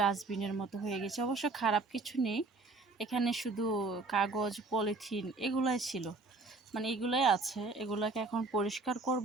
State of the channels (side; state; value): left; quieter; 3.6 dB